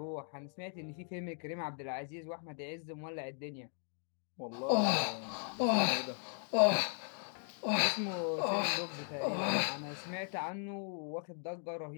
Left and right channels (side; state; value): right; silent; 53 dB below the other